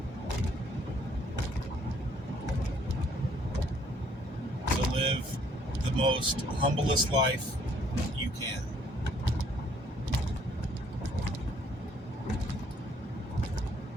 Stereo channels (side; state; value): both; normal; correlation 0.64